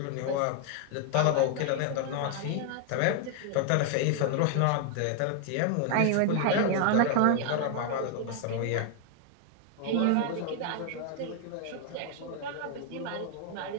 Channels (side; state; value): both; different; correlation 0.00